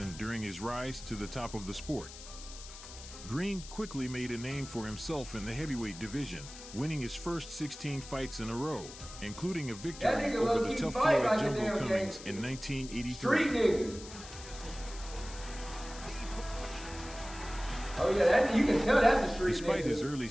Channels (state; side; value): noise; left; hiss, 14 dB below the sound